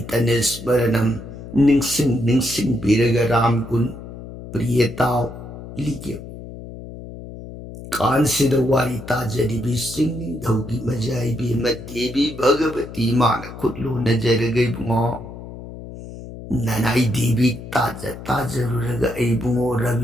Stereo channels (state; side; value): noise; left; hum, 13 dB below the sound